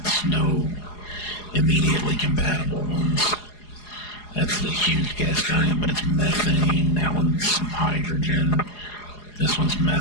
no immediately compatible ones. That's the huge gas giant, but it's methane. That one's hydrogen. This one's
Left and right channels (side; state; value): right; late; 4.8 ms